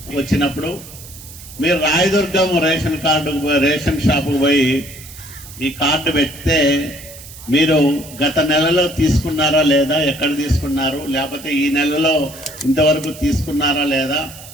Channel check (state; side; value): noise; right; hiss, 17 dB below the sound